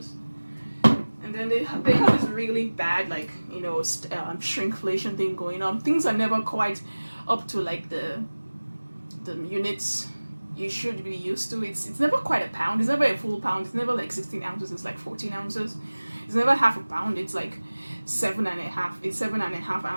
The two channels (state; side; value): inverted; both; correlation -1.00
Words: And then they have this really bad, like, you know, shrinkflation thing going on. Things are never quite up to like the units you should be used to. It's never quite a pound. It's never a full pound. It's never like 16 ounces. It's like 14 ounces. It's never half a pound. It's like 7.5. It's 7.5